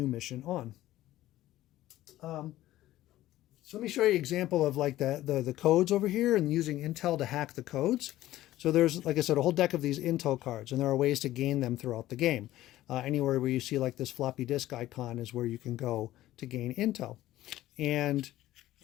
mission on. So let me show you an example of like the codes over here and using Intel to hack the codes. So there's, like I said, a whole deck of these Intel cards, and there are ways to gain them throughout the game. Anywhere where you see like this floppy disk icon is where you can go to gain Intel. And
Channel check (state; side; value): quieter; right; 15.0 dB